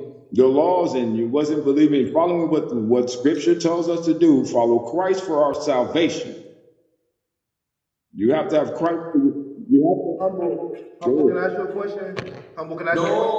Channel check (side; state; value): both; identical; correlation 1.00